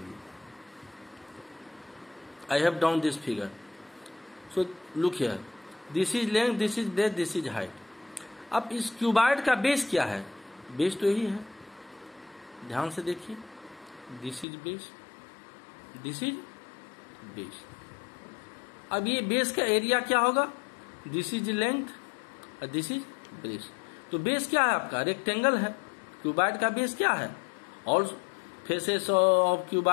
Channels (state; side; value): drops out; right; at 14.5 s